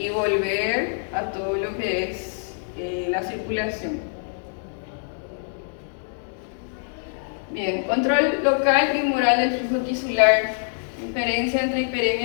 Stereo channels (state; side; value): silent; right; digital silence